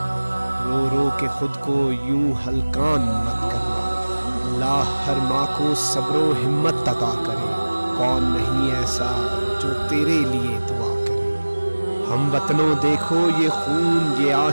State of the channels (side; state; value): both; inverted; correlation -1.00